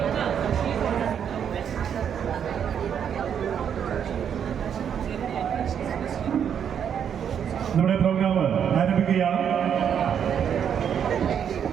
നമ്മുടെ പ്രോഗ്രാം ആരംഭിക്കുകയാണ്.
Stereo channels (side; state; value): left; quieter; 8.3 dB